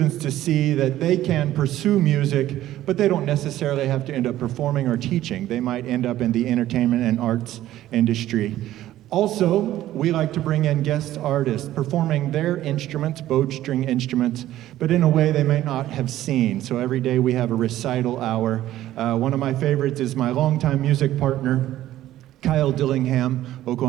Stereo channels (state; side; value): quieter; left; 13.9 dB